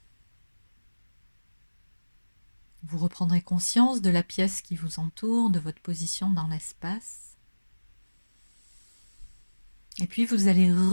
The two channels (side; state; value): both; inverted; correlation -1.00